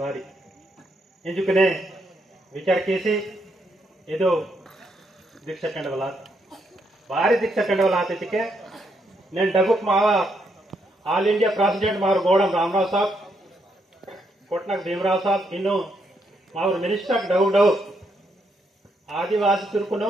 ಬಾರಿ ಎಂಜುಕನೆ ವಿಚಾರ ಕೇಸಿ ಇದು ದೀಕ್ಷಾ ಕಂಡವಲ ಬಾರಿ ದೀಕ್ಷಾ ಕಂಡವಲ ಆತಿಕೆ నేను డబుక్ మావా ఆల్ ఇండియా ప్రెసిడెంట్ మారు గోడం రామరావు సాబ్ कोटनाक भीमराव साहब इನ್ನು मावर मिनिस्टर डव आदिवासी तुर्कुनो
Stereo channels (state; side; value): normal; both; correlation 0.77